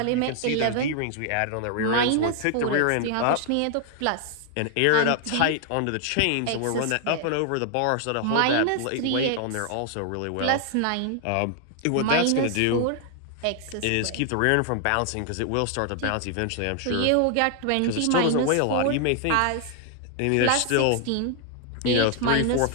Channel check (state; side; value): different; both; correlation 0.00